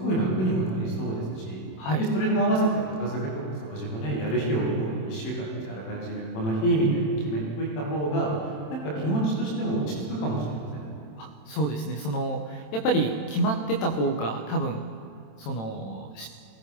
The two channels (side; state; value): right; late; 27 ms